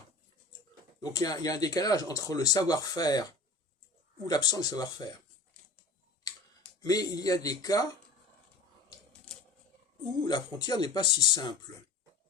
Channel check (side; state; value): right; quieter; 3.2 dB